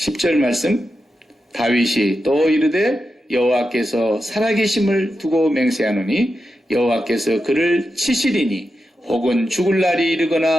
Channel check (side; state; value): both; normal; correlation 0.89